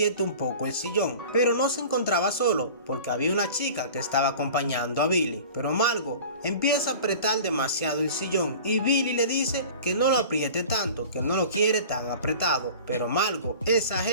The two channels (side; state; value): both; inverted; correlation -0.40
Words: un poco el sillón, pero no se encontraba solo porque había una chica que estaba acompañando a Billy. Pero Margo empieza a apretar demasiado el sillón y Billy le dice que no lo apriete tanto, que no lo quiere tan apretado, pero Margo